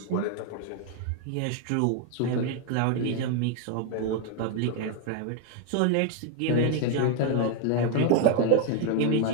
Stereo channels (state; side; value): different; both; correlation 0.01